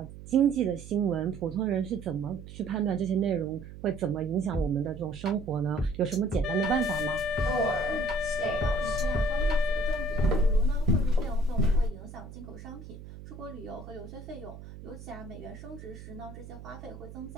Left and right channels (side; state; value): right; noise; hum, 14 dB below the sound